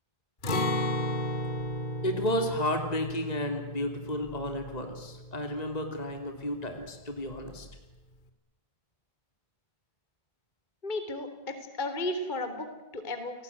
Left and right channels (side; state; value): right; late; 1.9 ms